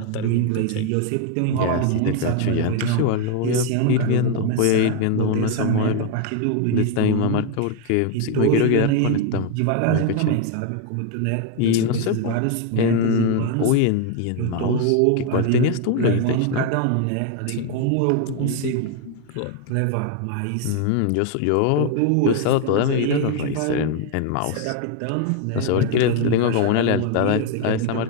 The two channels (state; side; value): different; both; correlation 0.01